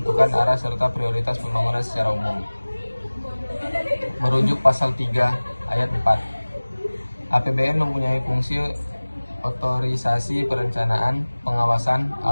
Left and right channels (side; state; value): both; inverted; correlation -1.00